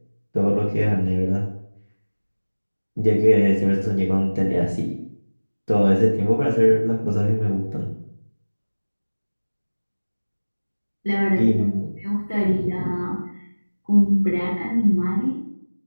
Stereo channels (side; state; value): both; inverted; correlation -1.00